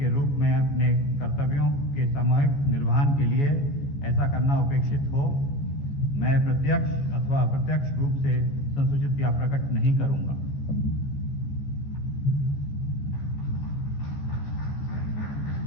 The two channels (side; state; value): right; late; 14 ms